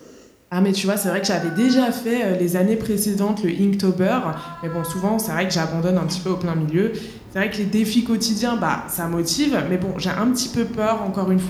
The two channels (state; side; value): identical; both; correlation 1.00